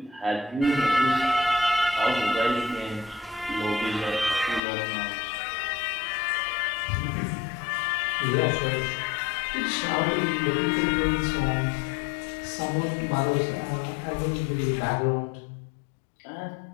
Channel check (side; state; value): right; drops out; at 4.6 s